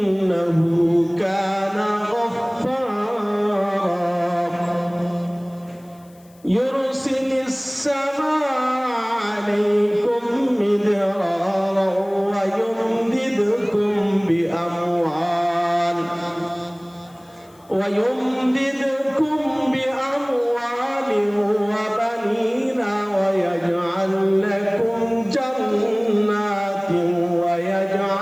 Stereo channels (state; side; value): noise; left; hiss, 30 dB below the sound